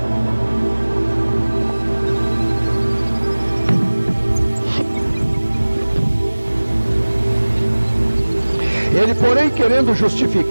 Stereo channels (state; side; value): inverted; both; correlation -1.00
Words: Ele, porém, querendo